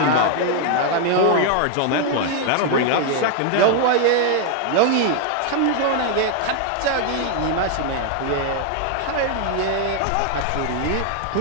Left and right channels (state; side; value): different; both; correlation 0.00